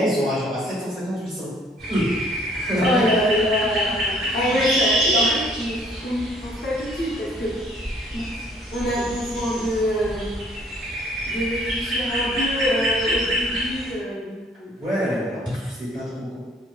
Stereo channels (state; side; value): normal; both; correlation 0.60